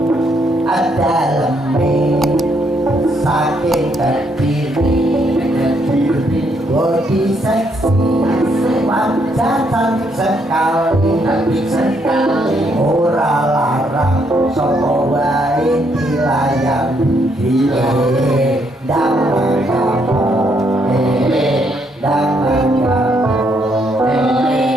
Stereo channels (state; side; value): normal; both; correlation 0.73